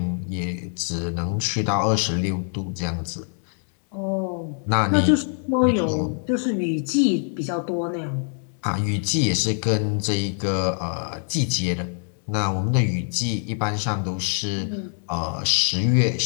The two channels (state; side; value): silent; right; 56 dB below the other